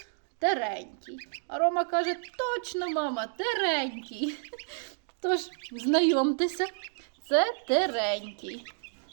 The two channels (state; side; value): silent; left; digital silence